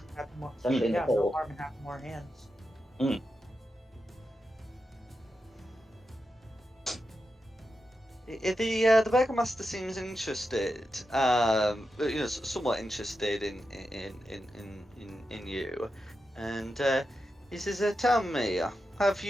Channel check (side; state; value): both; normal; correlation 0.89